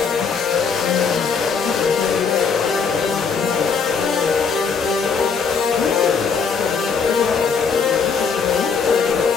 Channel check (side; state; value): right; quieter; 5.6 dB